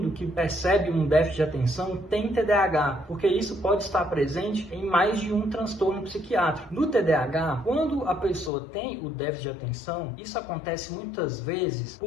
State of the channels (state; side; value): drops out; right; at 8.5 s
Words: que percebe um déficit de atenção tem TDAH, porque isso pode estar presente em mais de um transtorno psiquiátrico. No TDAH, quando a pessoa tem o déficit de atenção, isso acontece muitas vezes